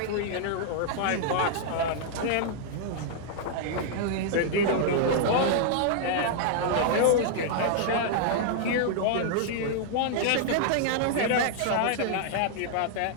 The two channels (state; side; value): different; both; correlation -0.01